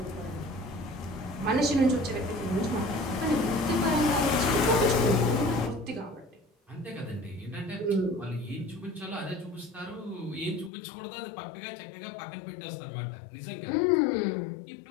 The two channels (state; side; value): drops out; right; at 10.7 s